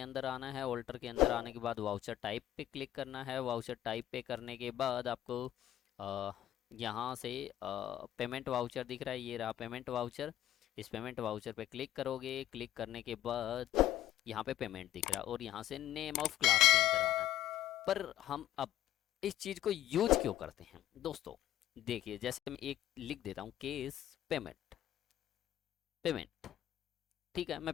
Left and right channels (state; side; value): quieter; right; 12.9 dB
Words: आना है। ऑल्टर के अंदर आने के बाद वाउचर टाइप पे क्लिक करना है। वाउचर टाइप पे करने के बाद आपको अ, यहाँ से पेमेंट वाउचर दिख रहा है, ये रहा पेमेंट वाउचर। इस पेमेंट वाउचर पे क्लिक करोगे। क्लिक करने के बाद यहाँ पे पेमेंट दिख रहा है और यहाँ से नेम ऑफ क्लास के अंदर आना है। पर हम अब इस चीज़ को यूज क्यों करते हैं दोस्तों, देखिए जैसे मैं एक लिख देता हूँ, केस पेमेंट पेमेंट। ठीक है, मैं